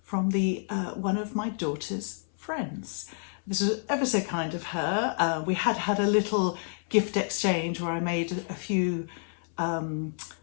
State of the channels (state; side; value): silent; right; 59 dB below the other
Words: from one of my daughter's friends. This was ever so kind of her. We had a little gift exchange where I made a few